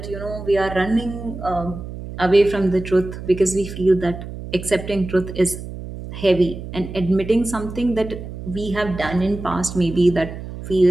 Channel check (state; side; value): noise; right; hum, 10 dB below the sound